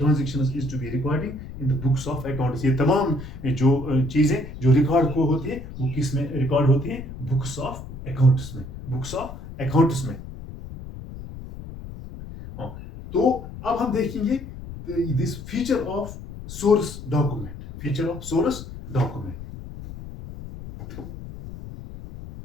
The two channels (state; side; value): noise; left; rumble, 12 dB below the sound